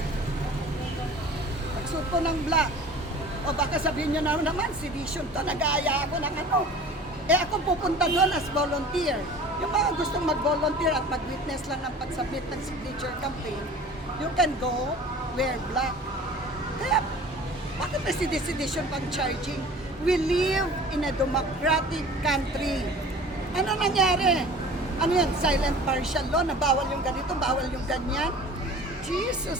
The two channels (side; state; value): both; normal; correlation 0.43